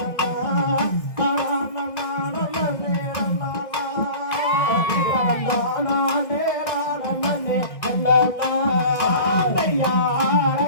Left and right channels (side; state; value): right; late; 1.6 ms